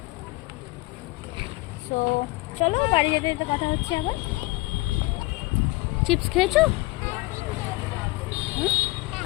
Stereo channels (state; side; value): quieter; right; 22.0 dB